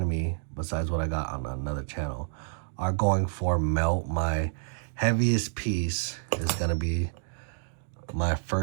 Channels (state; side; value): silent; left; digital silence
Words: of me, besides what I got on another channel, are going for melt. My heaviest piece is gonna be my